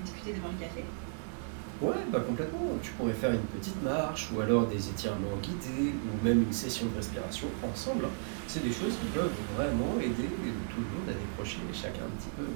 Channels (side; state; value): left; silent; digital silence